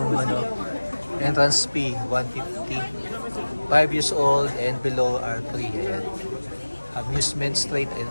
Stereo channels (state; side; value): inverted; both; correlation -1.00